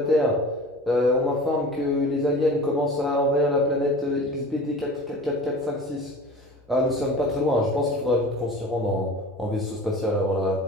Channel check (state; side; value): normal; both; correlation 0.39